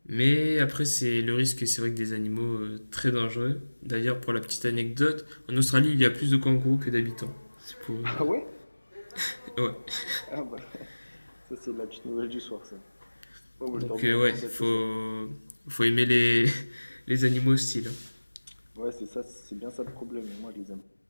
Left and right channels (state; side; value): inverted; both; correlation -1.00